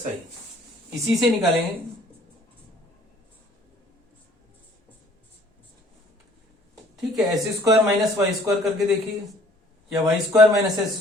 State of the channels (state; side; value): normal; both; correlation 0.57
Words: इसी से निकालेंगे। ठीक है, s square minus y square करके देखिए, या y square minus s